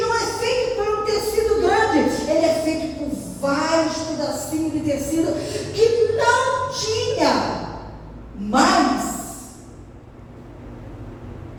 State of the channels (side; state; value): both; identical; correlation 1.00